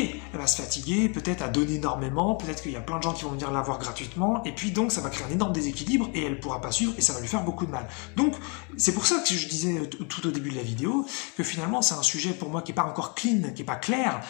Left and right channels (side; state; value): right; quieter; 34.2 dB